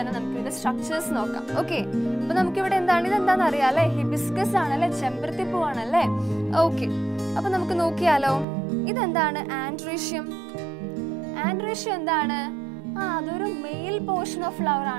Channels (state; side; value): drops out; left; at 8.5 s